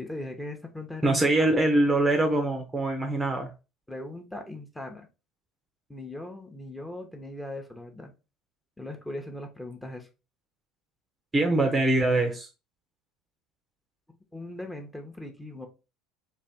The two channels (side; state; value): both; normal; correlation 0.77